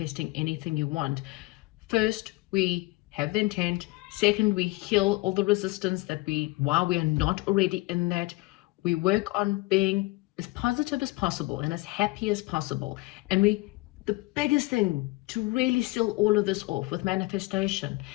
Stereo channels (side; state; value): right; quieter; 22.7 dB